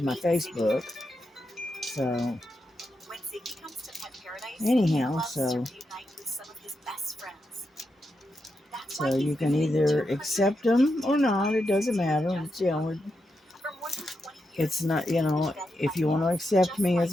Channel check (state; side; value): normal; both; correlation 0.86